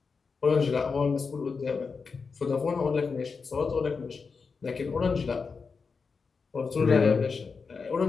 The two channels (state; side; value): quieter; right; 5.0 dB